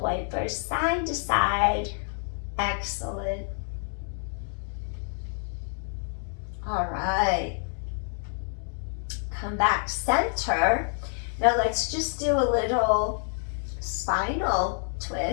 wiper side to side. Excellent. All right. Come back center. Now let's just do a little spinal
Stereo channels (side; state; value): right; silent; 59 dB below the other